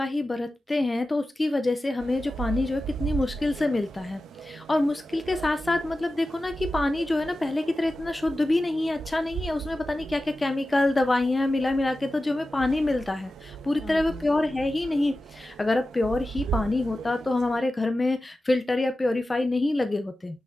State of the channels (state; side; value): normal; both; correlation 0.94